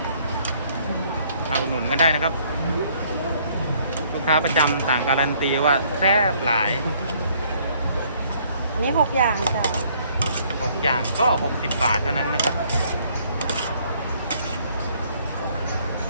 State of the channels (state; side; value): inverted; both; correlation -0.63